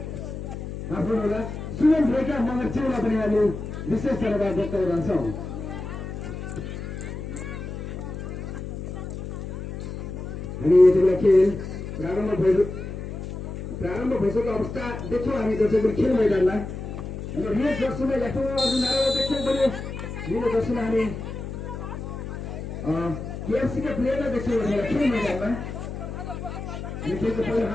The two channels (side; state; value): left; noise; hum, 7 dB below the sound